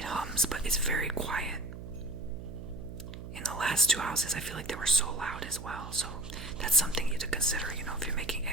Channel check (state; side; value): noise; right; hum, 11 dB below the sound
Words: hums, but it's very quiet. In the last two houses, I feel like they were so loud as well. So that's something you to consider, you know, if you're making